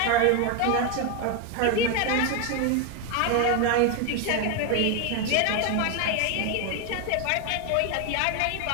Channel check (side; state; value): both; different; correlation 0.01